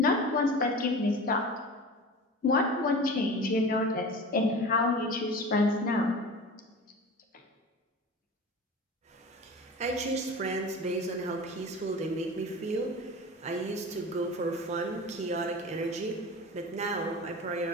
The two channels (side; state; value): both; normal; correlation 0.34